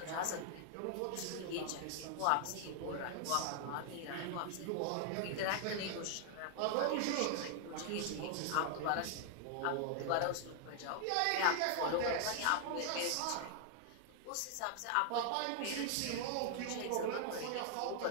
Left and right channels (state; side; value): different; both; correlation 0.00